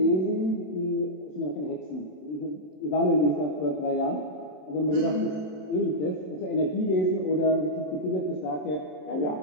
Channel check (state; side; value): late; right; 27 ms